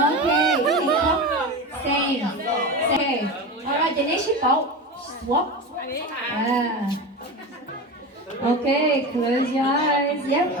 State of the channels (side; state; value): both; normal; correlation 0.25